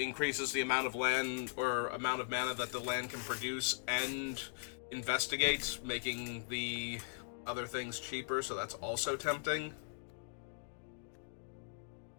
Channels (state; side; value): silent; right; digital silence